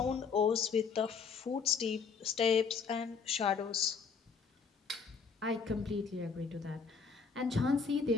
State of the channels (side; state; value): right; quieter; 5.6 dB